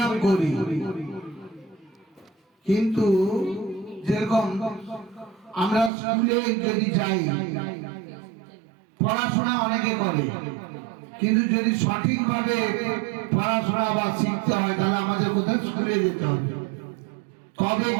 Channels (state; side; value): drops out; left; at 5.9 s